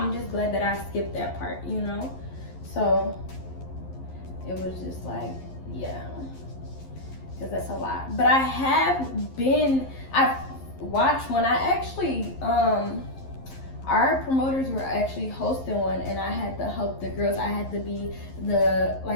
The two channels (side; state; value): right; late; 11 ms